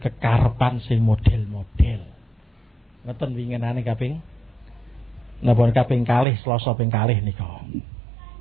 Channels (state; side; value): drops out; left; at 6.2 s